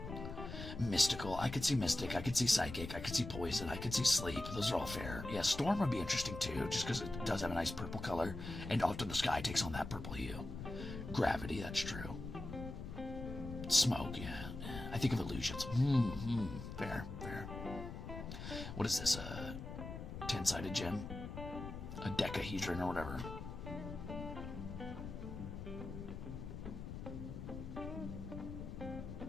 Mystical. I could see mystic. I could see psychic. I could see poison. I could see sleep. Those are all fair. Yeah, storm would be interesting too, just because it does have a nice purple color, and often the sky takes on that purple hue. Gravity. That's true. Smoke. Yeah. I think of illusions. Fair. Fair. What is this? A 10-sided gem? A decahedron or whatever.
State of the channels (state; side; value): noise; left; rumble, 8 dB below the sound